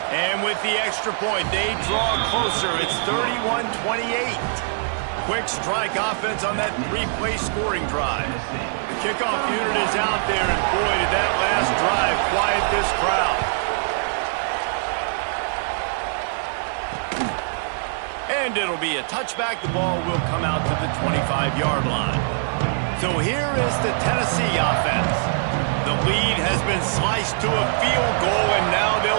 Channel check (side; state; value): left; silent; digital silence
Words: And with the extra point, they draw closer. It's 31-28. Quick strike offense on that three-play scoring drive. The kickoff unit is out there, and boy, did that last drive quiet this crowd. And it'll be a touchback. The ball will come out to the 25-yard line. So here is the Tennessee offense. The lead has been sliced to a field goal, and now